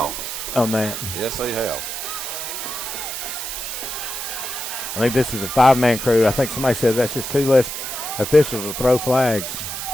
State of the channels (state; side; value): noise; right; hiss, 5 dB below the sound